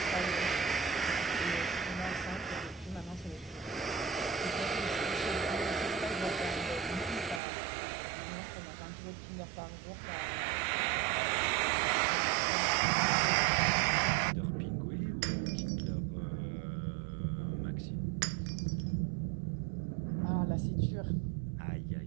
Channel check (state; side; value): drops out; left; at 7.4 s